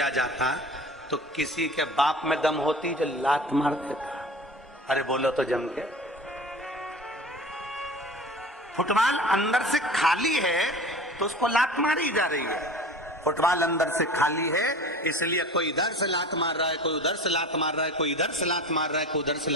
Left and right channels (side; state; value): both; normal; correlation 0.38